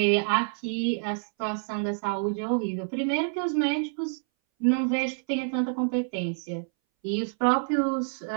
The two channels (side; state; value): left; silent; 60 dB below the other